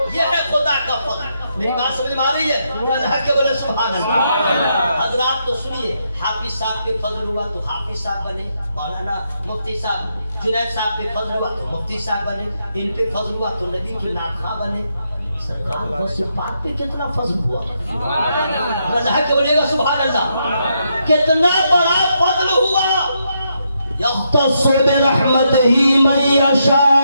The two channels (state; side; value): inverted; both; correlation -0.80